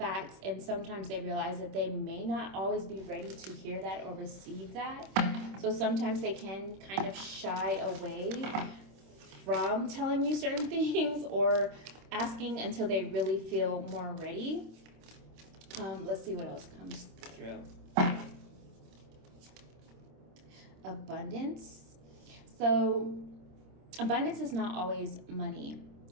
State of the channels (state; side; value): late; left; 26 ms